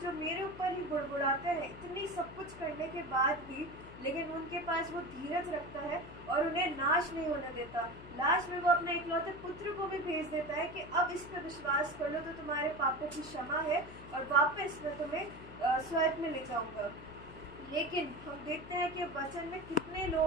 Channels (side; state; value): left; noise; hum, 16 dB below the sound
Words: मेरे ऊपर ही बुड़बुड़ाते हैं, इतनी सब कुछ करने के बाद भी, लेकिन उनके पास वो धीरज रखता है और उन्हें नाश नहीं होने देता। लास्ट में वो अपने इकलौते पुत्र को भी भेज देता है कि अब इस पर विश्वास कर लो तो तुम्हारे पापों की क्षमा है और वापस मैं तुम्हें स्वर्ग में ले जाऊंगा। लेकिन हम देखते हैं कि वचन में कितने